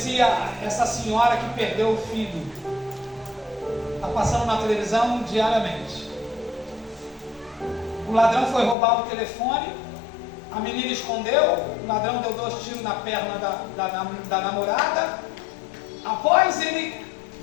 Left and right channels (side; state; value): right; drops out; at 8.8 s